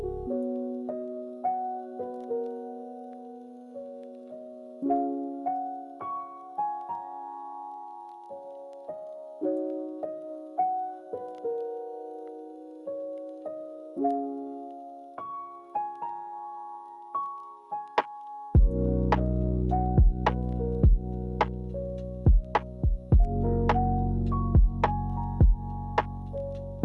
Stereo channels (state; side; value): identical; both; correlation 1.00